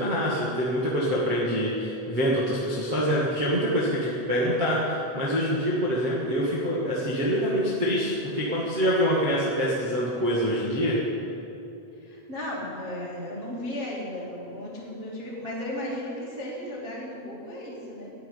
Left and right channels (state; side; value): late; left; 8.0 ms